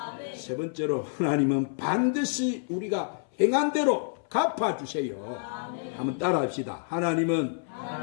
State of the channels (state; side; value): silent; right; 58 dB below the other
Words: 세 번째로 하나님은 반드시 우리가 행한 대로 갚아주세요. 아멘. 한번 따라합시다. 하나님은